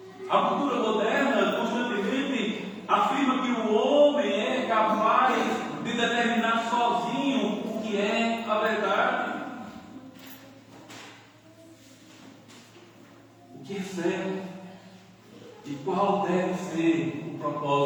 A cultura moderna constantemente afirma que o homem é capaz de determinar sozinho o que é a verdade. O que é certo e qual deve ser o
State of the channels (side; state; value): both; identical; correlation 1.00